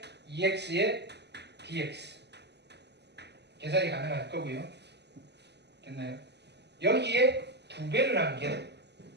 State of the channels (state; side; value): late; left; 0.50 ms